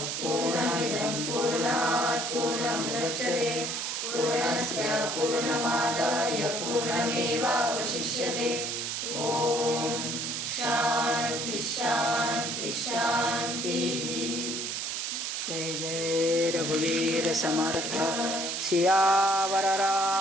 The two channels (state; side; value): noise; right; hiss, 3 dB below the sound